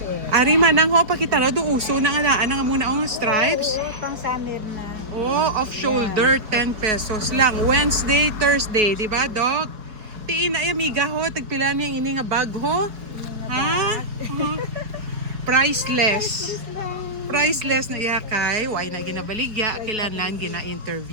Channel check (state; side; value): late; left; 4.7 ms